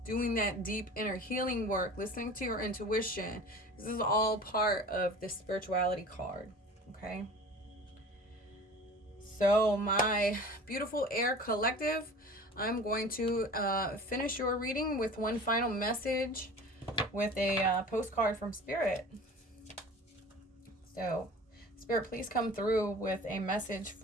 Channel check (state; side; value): normal; both; correlation 0.41